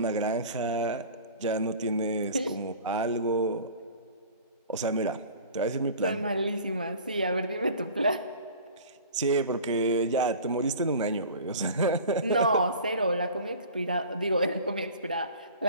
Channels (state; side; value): inverted; both; correlation -0.42